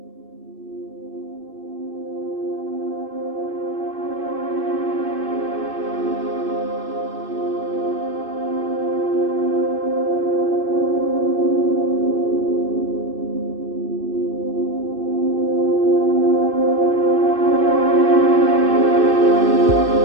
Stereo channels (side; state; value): left; late; 2.6 ms